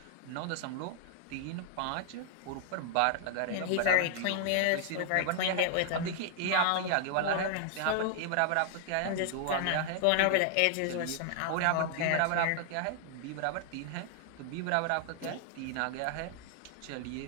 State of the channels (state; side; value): different; both; correlation 0.00